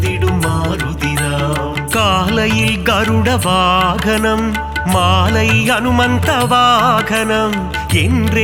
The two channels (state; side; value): identical; both; correlation 1.00